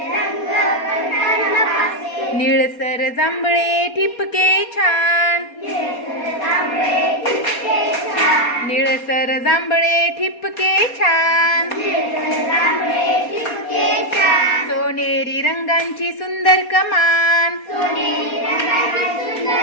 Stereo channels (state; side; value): late; right; 4.2 ms